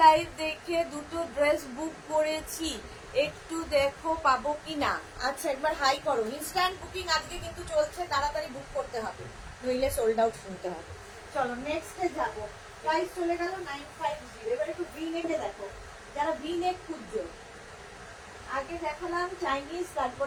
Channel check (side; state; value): both; identical; correlation 1.00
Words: লাইভ দেখে দুটো ড্রেস বুক করেছি, একটু দেখো পাবো কিনা। আচ্ছা, একবার হাই করো। ইনস্ট্যান্ট বুকিং আজকে কিন্তু চলছে, তাড়াতাড়ি বুক করতে হবে, নইলে সোল্ড আউট শুনতে হবে। চলো নেক্সটে যাবো। প্রাইস চলে গেল 950। এবার একটু ভি নেকে দেখো, যারা ভি নেক খুঁজছো। আগে দেখালাম চাইনিজ,